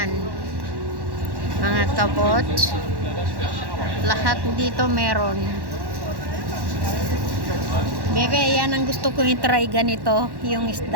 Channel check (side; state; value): left; late; 1.1 ms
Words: mga kabot, lahat dito meron. Bebe, yan ang gusto kong i-try, ganito yung